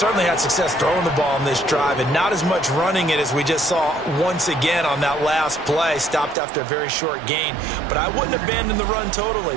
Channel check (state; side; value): drops out; left; at 6.4 s